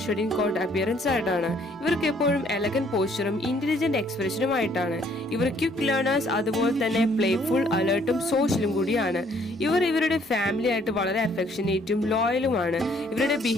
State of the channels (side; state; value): both; normal; correlation 0.63